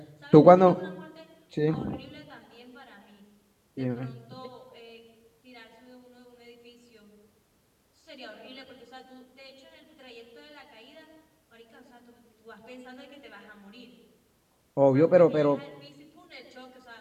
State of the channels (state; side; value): identical; both; correlation 1.00